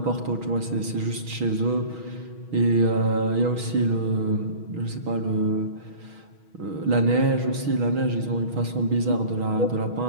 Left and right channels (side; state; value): left; late; 6.3 ms